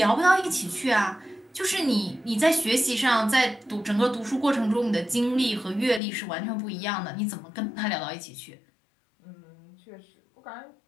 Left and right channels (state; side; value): drops out; right; at 6.0 s